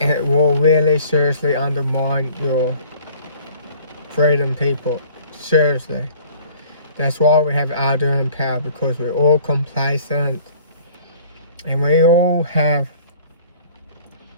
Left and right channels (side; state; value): both; inverted; correlation -0.52